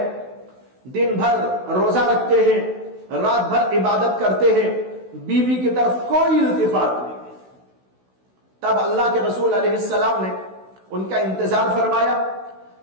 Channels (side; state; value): left; late; 16 ms